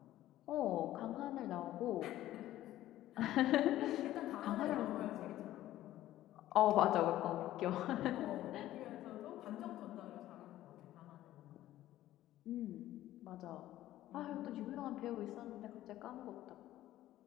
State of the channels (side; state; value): right; quieter; 14.2 dB